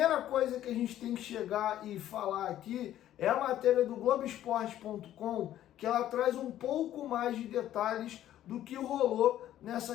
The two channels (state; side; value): quieter; right; 12.4 dB